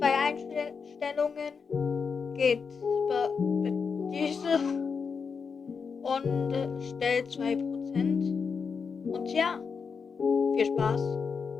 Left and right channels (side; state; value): right; quieter; 5.7 dB